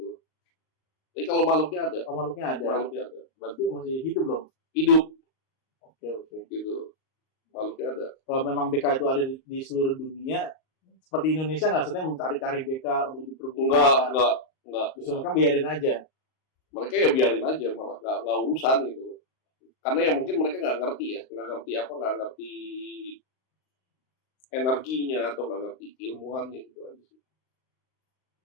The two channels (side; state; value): right; late; 38 ms